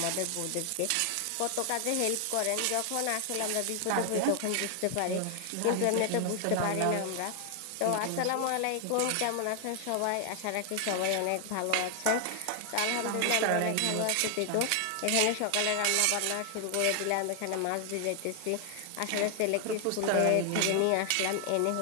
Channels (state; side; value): different; both; correlation 0.00